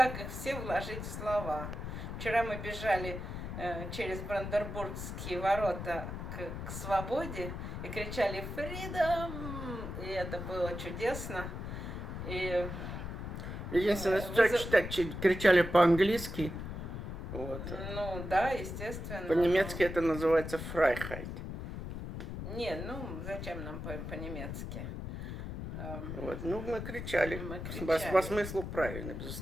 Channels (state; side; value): noise; left; rumble, 6 dB below the sound